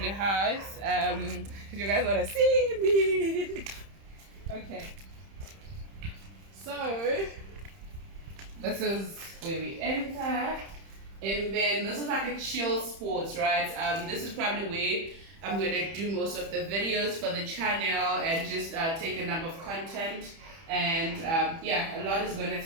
house. You guys wanna see me? Okay. So this is where we enter. And then this is like a chill sports, right? This is probably where I'm going to do most of the videos for the channel and just take a number of content. And yeah, a lot is going to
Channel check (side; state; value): left; late; 30 ms